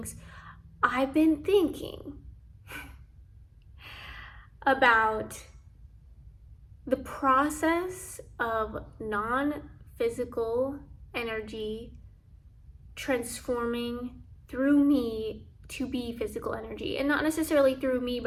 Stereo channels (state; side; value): identical; both; correlation 1.00